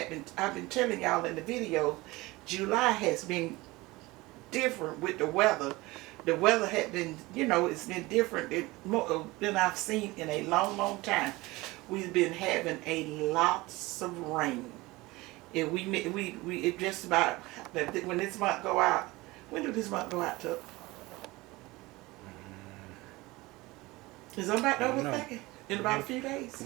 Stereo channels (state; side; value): quieter; left; 21.2 dB